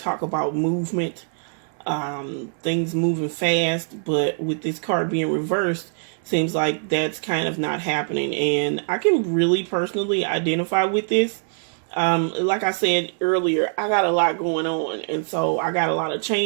about movement, things moving fast. But with this card being reversed, seems like that's kind of not happening. And I can really personally identify with this. Like I said earlier, I got a lot going on, and so I got a lot of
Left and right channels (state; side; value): silent; left; digital silence